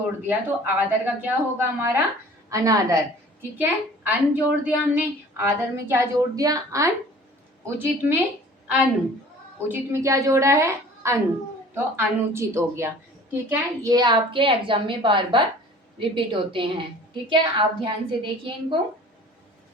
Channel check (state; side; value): normal; both; correlation 0.47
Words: दिया तो आदर का क्या होगा हमारा? अनादर। ठीक है, अन जोड़ दिया हमने, आदर में क्या जोड़ दिया? अन। उचित में अनु। उचित में क्या जोड़ा है? अनु, तो अनुचित हो गया। ठीक है, ये आपके एग्जाम में बार बार रिपीट होते हैं। ठीक है, आप ध्यान से देखिए इनको।